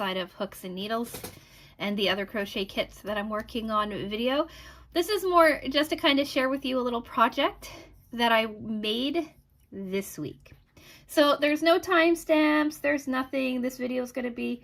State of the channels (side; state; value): both; identical; correlation 1.00